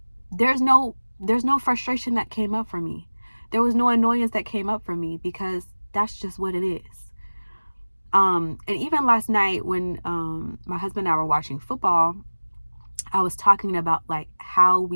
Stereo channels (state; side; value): inverted; both; correlation -1.00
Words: there's no frustration that came up for me. There was no annoyance that came up for me, because that's just what it is. And even last night when my husband and I were watching football, I was talking about like how